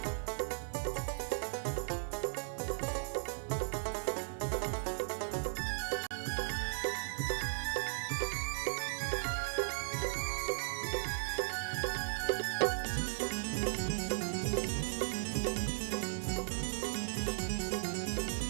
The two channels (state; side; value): silent; left; digital silence